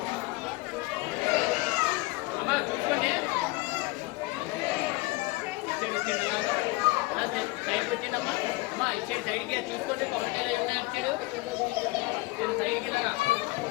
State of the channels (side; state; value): right; quieter; 22.2 dB